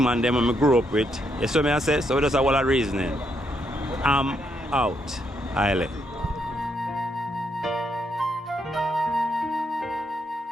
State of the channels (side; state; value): both; normal; correlation 0.77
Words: them I grew up with. You see what I say? So we just have all that reasoning. I'm out. Highly.